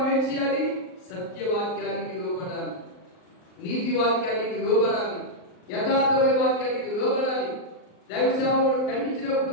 ఏం చేయాలి? సత్యవాక్యం నీతి వాక్యానికి లోబడాలి, యథార్థమైన వాక్యానికి లోబడాలి, దైవ సేవకుడు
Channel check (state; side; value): late; right; 38 ms